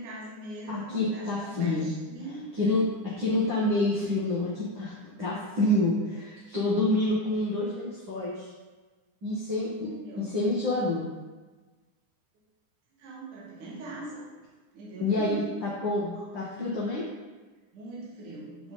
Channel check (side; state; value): left; late; 9.9 ms